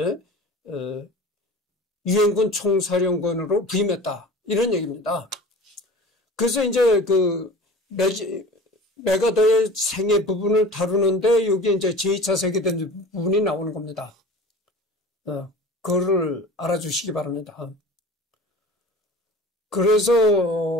유엔군 총사령관으로 부임했다. 이런 얘기입니다. 그래서 이제 메가더의 생애 부분을 다루는데 여기 이제 제2차 세계대전 부분이 나오는 겁니다. 그거를 알아주시기 바랍니다.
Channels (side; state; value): both; normal; correlation 0.39